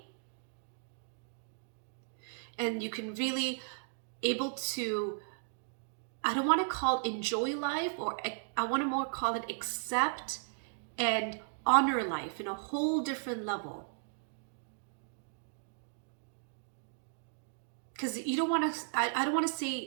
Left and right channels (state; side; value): silent; left; digital silence